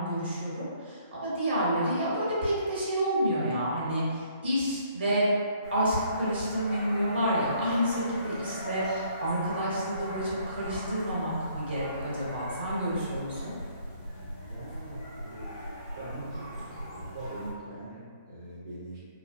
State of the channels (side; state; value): both; inverted; correlation -0.64